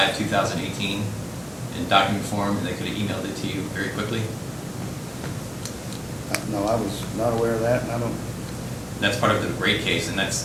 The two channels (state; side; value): identical; both; correlation 1.00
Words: of 2018 in document form, and they could have emailed it to you very quickly? No, I was not aware of that, and I don't. That's part of the rate case, and that's